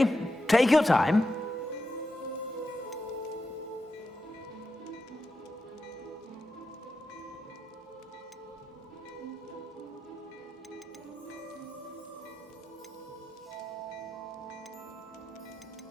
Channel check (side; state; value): both; normal; correlation 0.88